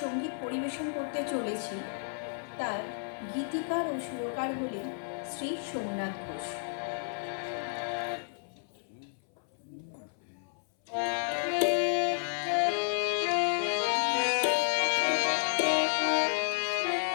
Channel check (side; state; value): right; silent; 57 dB below the other